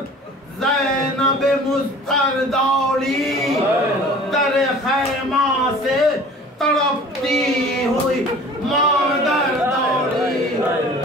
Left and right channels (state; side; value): normal; both; correlation 0.45